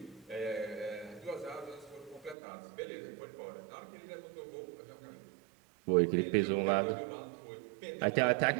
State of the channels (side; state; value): left; drops out; at 2.4 s